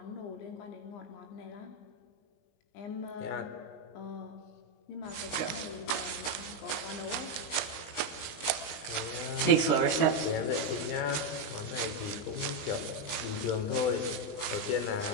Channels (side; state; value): right; late; 20 ms